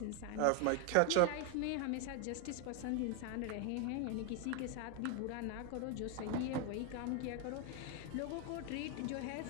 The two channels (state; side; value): different; both; correlation 0.01